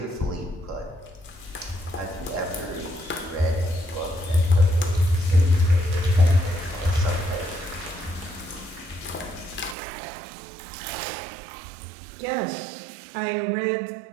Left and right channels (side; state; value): left; drops out; at 9.8 s